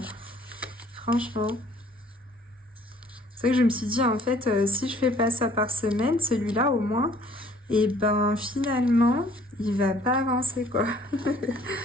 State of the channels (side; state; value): both; normal; correlation 0.57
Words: Franchement. C'est vrai que je me suis dit, en fait, si je fais pas ça par semaine, celui-là au moins, et finalement, il va pas avancer, quoi.